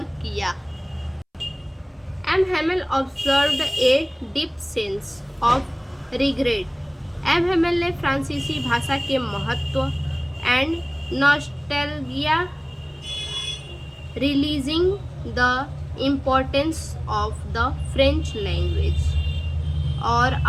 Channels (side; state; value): both; identical; correlation 1.00